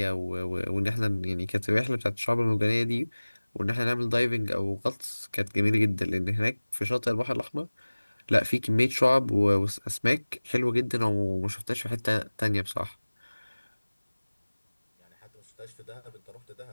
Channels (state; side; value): inverted; both; correlation -1.00